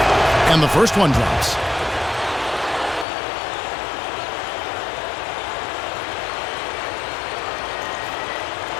And the first one drops.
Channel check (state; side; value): drops out; right; at 3.1 s